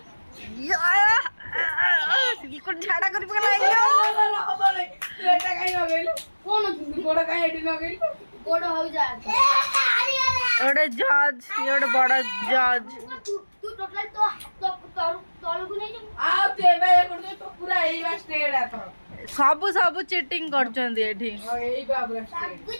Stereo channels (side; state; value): both; inverted; correlation -1.00